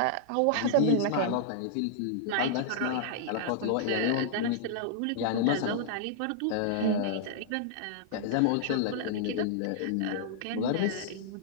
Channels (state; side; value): different; both; correlation -0.02